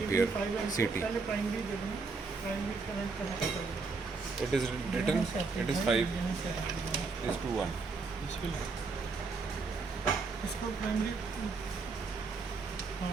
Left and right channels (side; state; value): left; quieter; 4.3 dB